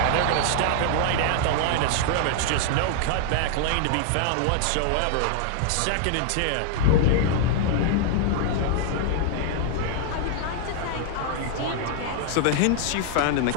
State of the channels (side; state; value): both; different; correlation 0.00